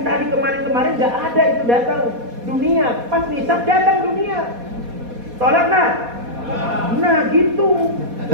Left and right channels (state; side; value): late; left; 4.2 ms